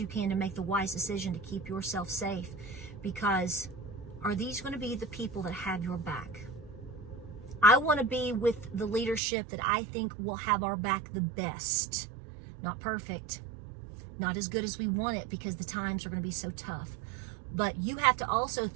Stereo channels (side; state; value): left; drops out; at 9.2 s